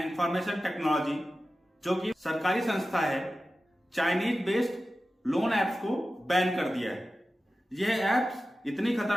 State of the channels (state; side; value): normal; both; correlation 0.94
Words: information technology, जो कि सरकारी संस्था है, चाइनीज बेस्ड लोन एप्स को बैन कर दिया है। यह एप्स इतनी